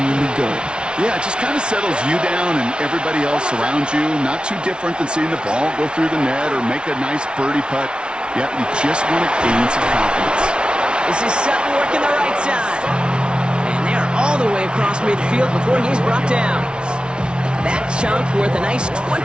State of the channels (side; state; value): left; late; 0.056 ms